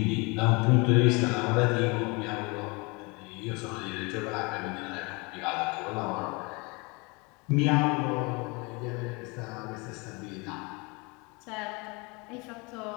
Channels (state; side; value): quieter; right; 28.2 dB